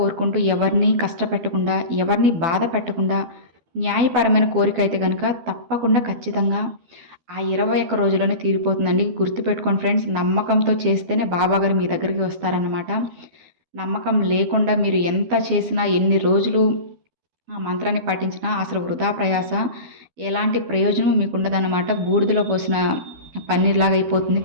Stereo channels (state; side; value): late; left; 12 ms